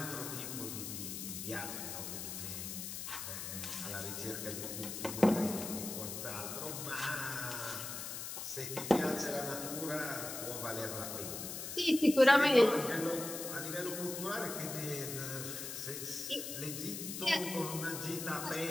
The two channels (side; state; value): left; noise; hiss, 6 dB below the sound